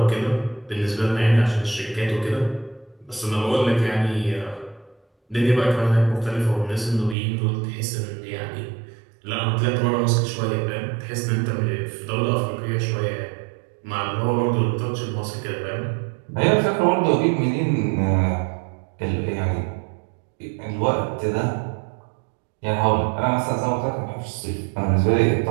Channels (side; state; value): left; drops out; at 7.2 s